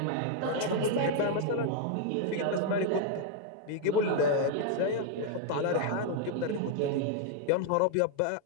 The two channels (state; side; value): different; both; correlation 0.00